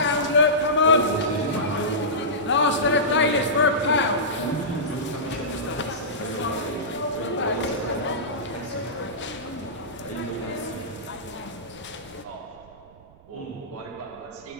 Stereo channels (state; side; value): noise; right; rumble, 25 dB below the sound